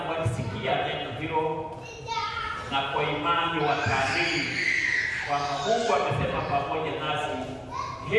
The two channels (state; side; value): identical; both; correlation 1.00